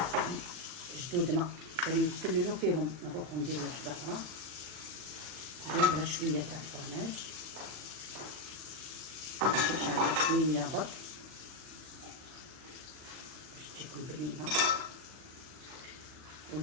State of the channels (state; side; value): late; left; 40 ms